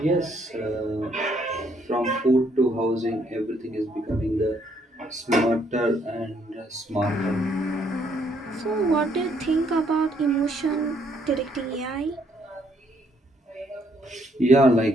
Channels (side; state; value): both; normal; correlation 0.69